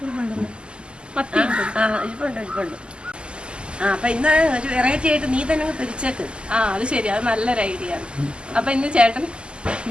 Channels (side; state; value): left; late; 0.050 ms